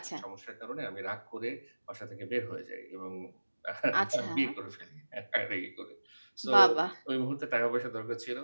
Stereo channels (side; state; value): both; inverted; correlation -1.00